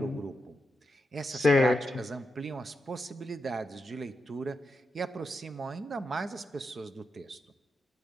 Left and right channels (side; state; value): both; normal; correlation 0.85